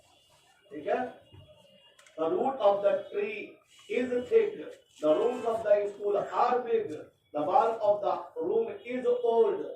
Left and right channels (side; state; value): both; identical; correlation 1.00